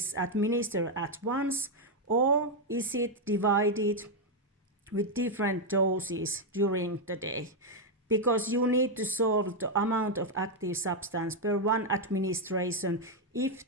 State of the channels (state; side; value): normal; both; correlation 0.01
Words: administered at once or is it divided with different doses during the day, because you need to solve the amount of active substance per one administration if